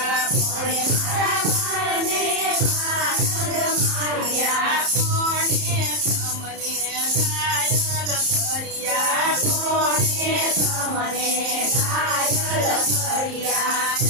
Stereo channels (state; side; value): late; left; 30 ms